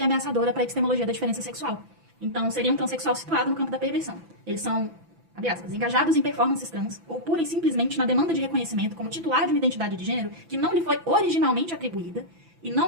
ameaçadora para a epistemologia da diferença sexual, Então, seria um transexual situado no campo da perversão. Eles são, abre aspas, engajados em performances trans ou pura e simplesmente na demanda de reconhecimento como titular de uma identidade de gênero que não lhe foi originalmente atribuída e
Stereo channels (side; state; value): left; late; 6.0 ms